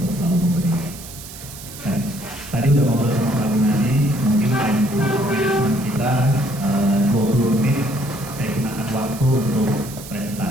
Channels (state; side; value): noise; right; hiss, 15 dB below the sound